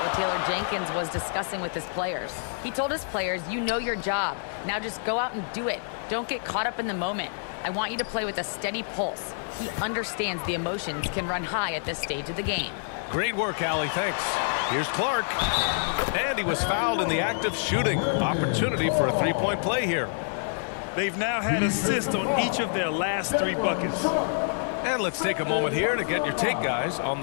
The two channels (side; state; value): right; silent; digital silence